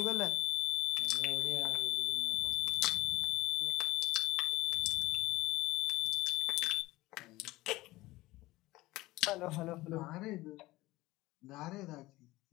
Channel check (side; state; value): right; quieter; 18.9 dB